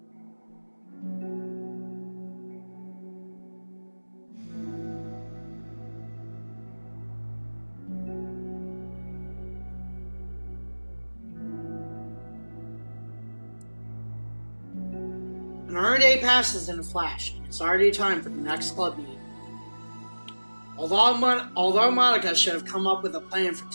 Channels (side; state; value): both; inverted; correlation -1.00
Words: Another day passes in a flash, and it's already time for the next club meeting. Although Monica should have come up with a plan for